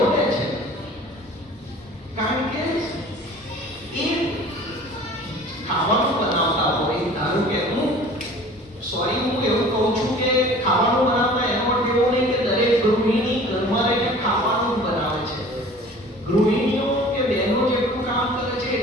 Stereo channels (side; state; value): both; normal; correlation 0.46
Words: લે છે. કારણ કે એ ખાવાનું બનાવતા હોય, ધારો કે હું એવું કહું છું કે ખાવાનું બનાવતા એનો અર્થ એવો નહીં કે દરેક ગૃહિણી ઘરમાં રહીને ખાવાનું બનાવે છે. ગૃહિણીઓ કે બહેનો જેટલું કામ કરે છે